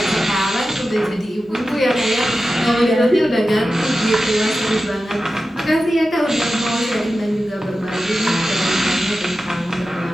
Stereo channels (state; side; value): normal; both; correlation 0.93